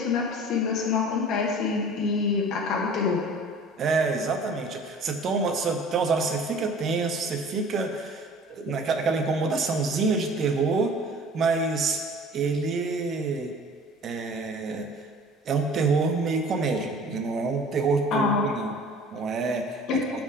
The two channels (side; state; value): both; normal; correlation 0.46